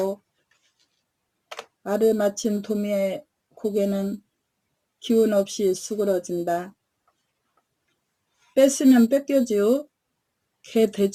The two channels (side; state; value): both; identical; correlation 1.00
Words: 말을 마친 도미의 고개는 기운 없이 수그러진다. 뺐으면 뺏겨지요. 개